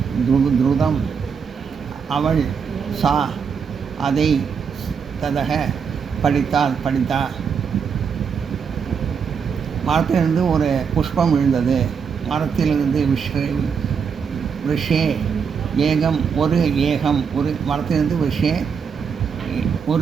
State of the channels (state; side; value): quieter; left; 6.4 dB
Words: துருதம் அவள் சா அதை ததக படித்தா. மரத்திலிருந்து ஒரு புஷ்பம் விழுந்தது. மரத்திலிருந்து விஷே ஏகம் ஒரு ஏகம் ஒரு மரத்திலிருந்து விஷே